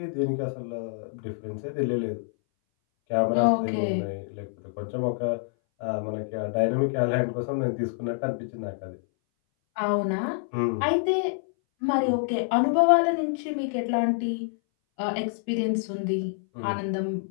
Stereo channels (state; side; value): silent; right; 59 dB below the other